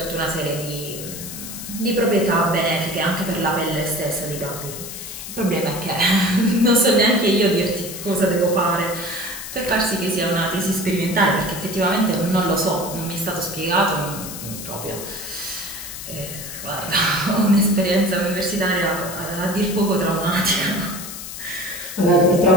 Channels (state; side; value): noise; left; hiss, 10 dB below the sound